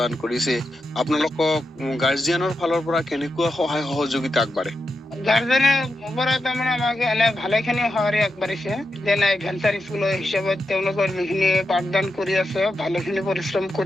কৰিছে, আপোনালোকক গাৰ্জিয়ানৰ ফালৰ পৰা কেনেকুৱা সহায় সহযোগিতা আগবাঢ়ে? গাৰ্জেনৰ পৰা তাৰমানে আমাক এনে ভালেখিনি সঁহাৰি আগবাঢ়িছে। যেনে ভেঞ্চাৰ স্কুলৰ হিচাপত তেওঁলোকৰ যিখিনি পাঠদান কৰি আছে, ভালেখিনি পৰিশ্ৰম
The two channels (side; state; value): both; normal; correlation 0.87